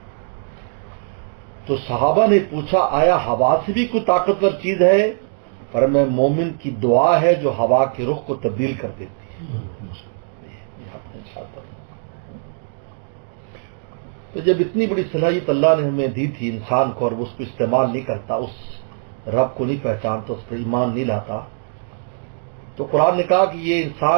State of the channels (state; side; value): silent; left; digital silence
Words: تو صحابہ نے پوچھا آیا ہوا سے بھی کوئی طاقتور چیز ہے؟ پر میں مومن کی دعا ہے جو ہوا کے رخ کو تبدیل کر دیتی ہے. تو جب اتنی بڑی صلاحیت اللہ نے ہمیں دی تھی انسان کو، اور وہ اس کو استعمال نہیں کرتا، اس رب کو نہیں پہچانتا، اس پر ایمان نہیں لاتا، تو قرآن نے کہا کہ یہ